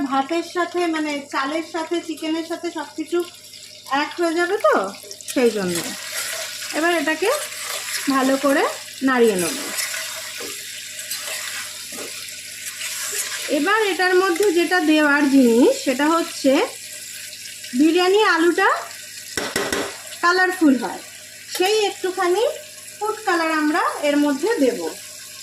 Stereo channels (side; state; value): both; identical; correlation 1.00